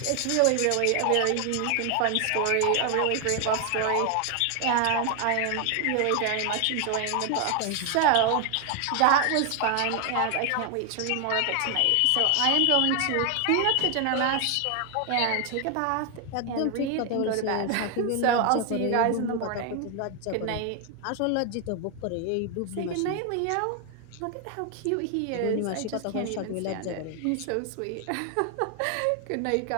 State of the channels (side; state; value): both; different; correlation 0.00